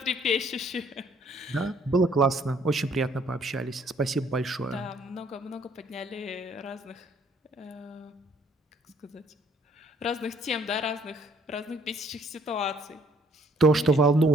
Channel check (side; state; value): both; normal; correlation 0.62